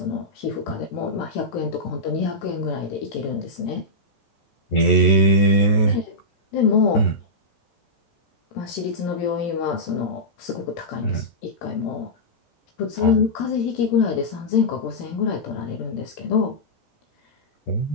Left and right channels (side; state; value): right; late; 14 ms